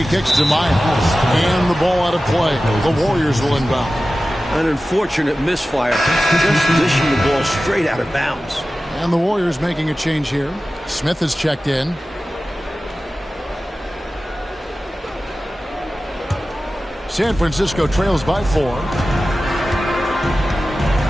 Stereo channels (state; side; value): normal; both; correlation 0.95